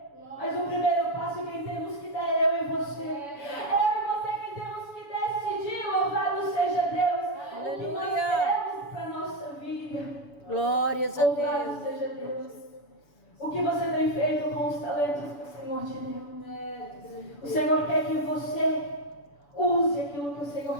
mas o primeiro passo quem temos que dar é eu e você. Eu e você quem temos que decidir. Louvado seja Deus. O que nós queremos para a nossa vida. Glórias a Louvado Deus. seja Deus. O que você tem feito com os talentos que o Senhor te deu? O Senhor quer que você use aquilo que o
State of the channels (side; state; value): right; late; 7.0 ms